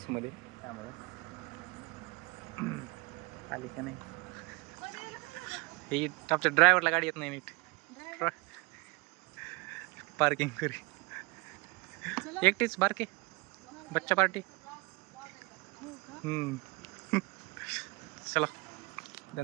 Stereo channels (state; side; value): quieter; left; 26.3 dB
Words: मध्ये, त्यामुळं आली का नाही ही आमच्या ड्रायव्हरला गाडी येत नाही नीट पार्किंग करी एकटीच बारके बच्चा पार्टी चला